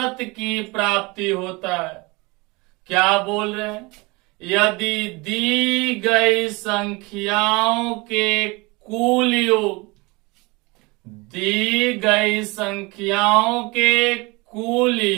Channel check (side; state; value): left; quieter; 25.4 dB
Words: की प्राप्ति होता है। क्या बोल रहे हैं? यदि दी गई संख्याओं के कुल योग, दी गई संख्याओं के कुल